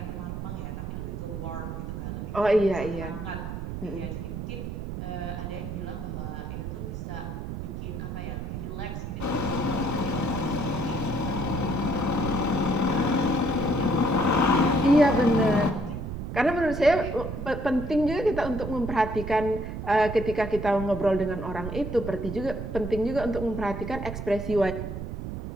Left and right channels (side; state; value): right; noise; rumble, 6 dB below the sound